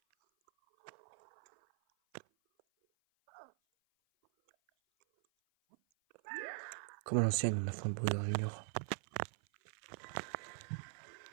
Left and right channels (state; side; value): silent; left; 50 dB below the other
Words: Comme à l'ancienne, on a fait un Bowser Junior.